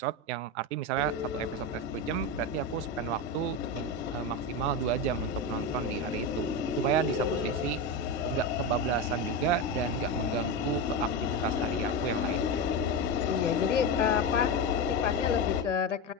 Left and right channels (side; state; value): both; normal; correlation 0.16